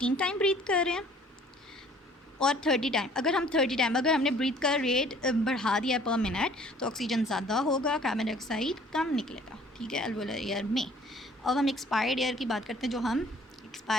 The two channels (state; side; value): normal; both; correlation 0.54